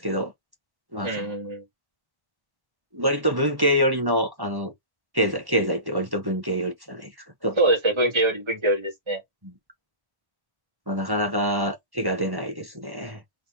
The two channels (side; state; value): left; late; 1.1 ms